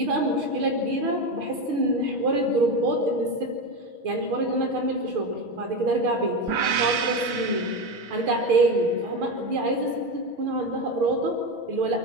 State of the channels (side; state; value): left; late; 6.2 ms